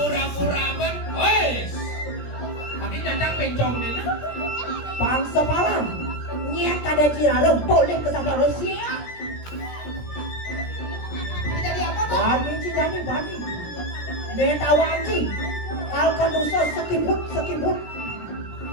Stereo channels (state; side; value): late; right; 17 ms